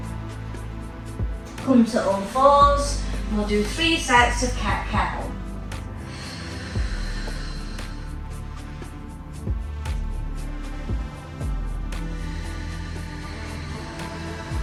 Come to all fours. We'll do 3 sets of cat-cow.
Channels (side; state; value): both; identical; correlation 1.00